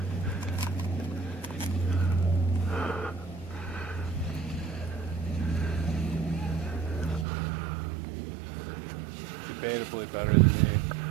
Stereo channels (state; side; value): drops out; left; at 7.2 s